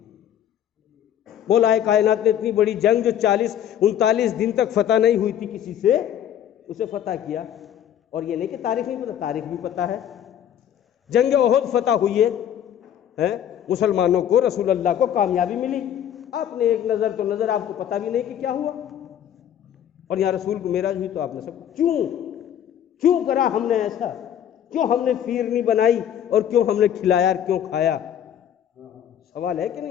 مولا کائنات نے اتنی بڑی جنگ جو 39 دن تک فتح نہیں ہوئی تھی کسی سے، اسے فتح کیا، اور یہ نہیں کہ تاریخ نہیں پتہ، تاریخ بھی پتہ ہے۔ جنگ احد فتح ہوئی ہے، مسلمانوں کو، رسول اللہ کو کامیابی ملی، آپ نے ایک نظر تو نظر، آپ کو پتہ بھی نہیں کہ کیا ہوا، اور یہاں رسول کو معراج ہوئی تو آپ نے سب کیوں کرا ہم نے ایسا؟ کیوں ہم نے فیرنی بنائی، اور کیوں ہم نے کھلایا اور کیوں کھایا؟ سوال ہے کہ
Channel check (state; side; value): quieter; right; 10.1 dB